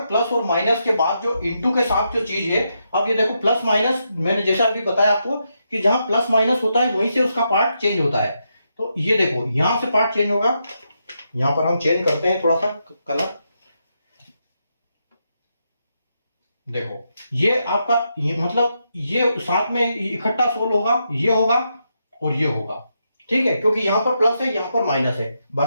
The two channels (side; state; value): both; inverted; correlation -0.82